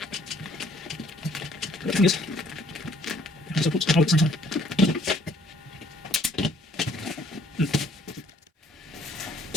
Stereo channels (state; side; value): normal; both; correlation 0.62